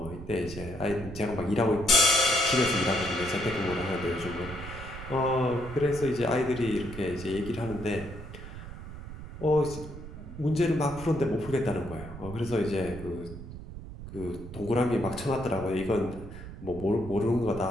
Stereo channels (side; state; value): right; noise; rumble, 11 dB below the sound